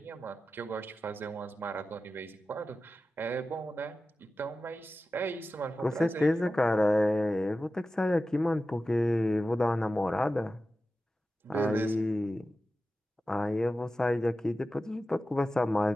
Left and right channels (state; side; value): normal; both; correlation 0.94